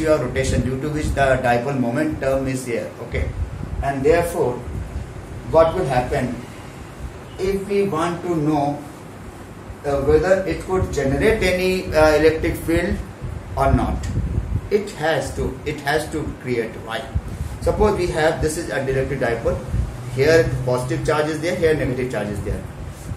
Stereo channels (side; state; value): both; identical; correlation 1.00